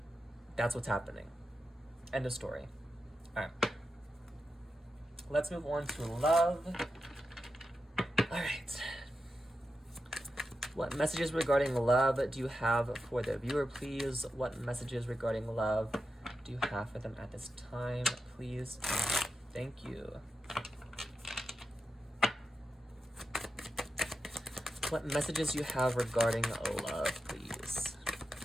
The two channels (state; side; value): normal; both; correlation 0.89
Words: That's what's happening. End of story. All right. Let's move on to love. All right. What messages regarding love do you have for the viewer, please? What messages regarding love do you have for them at this time, please? Thank you. What messages you have regarding love, please?